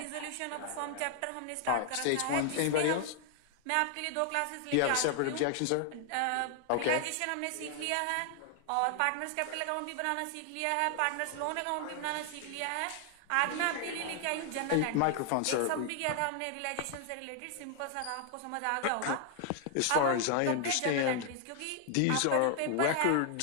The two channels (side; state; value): both; different; correlation 0.00